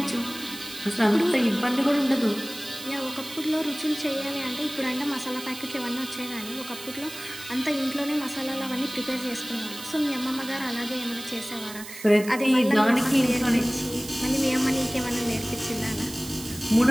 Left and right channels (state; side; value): noise; right; hiss, 13 dB below the sound